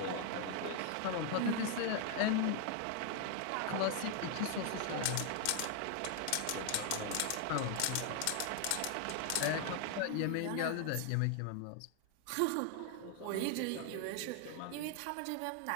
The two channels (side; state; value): both; different; correlation 0.00